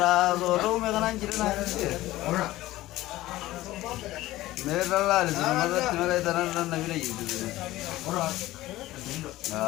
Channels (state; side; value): quieter; right; 16.6 dB